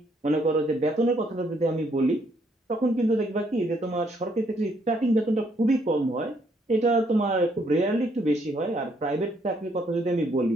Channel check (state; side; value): normal; both; correlation 0.70